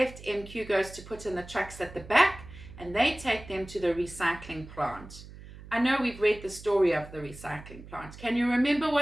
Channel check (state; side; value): noise; right; hum, 16 dB below the sound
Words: MQ goes to put in the trucks at the back and they take them to the recycling plant. I know we've read the story of the recycling plant. Can you remember